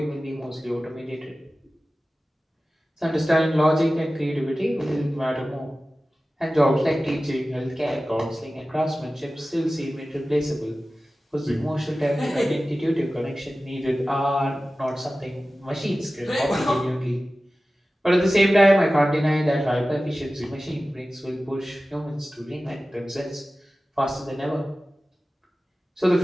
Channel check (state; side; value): normal; both; correlation 0.96